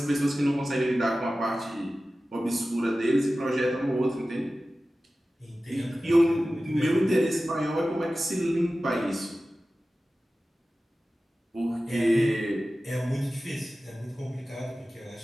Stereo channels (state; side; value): normal; both; correlation 0.95